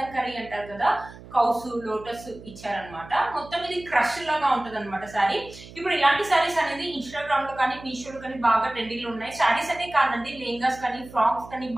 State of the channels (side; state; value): right; noise; hum, 18 dB below the sound